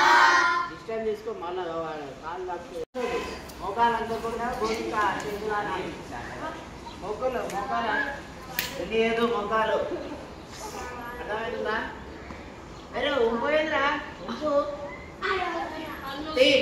డిస్టెన్స్ తీసుకో మళ్ళా కాళ్ళు లాక్కు మోకాలు అంతకుండా భూమిక చేతులు మొక్కలు మోకాలు తెలియదు మొక్కలు అర్థమవుతుందా అరే ఉంపోయిందిరా ఉంపు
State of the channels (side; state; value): both; identical; correlation 1.00